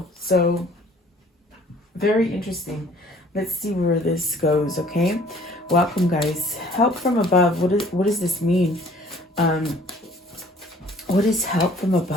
So, very interesting. Let's see where this goes, okay? Welcome, guys. Help from above. What does this mean? What is help from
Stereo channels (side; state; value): both; normal; correlation 0.55